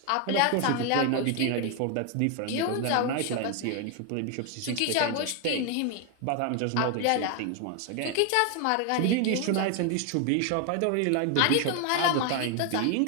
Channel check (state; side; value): different; both; correlation 0.01